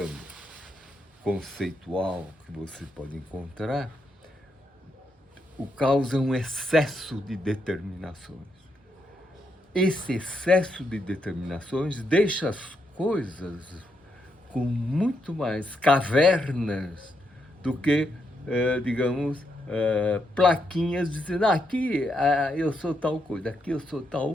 conceitual que você pode encontrar, o caos é um excesso de determinações. Esse excesso de determinações deixa as coisas com muito mais cavernas do que, digamos, plaquinhas dizendo, aqui eu sou tal coisa, aqui eu sou tal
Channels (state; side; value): normal; both; correlation 0.80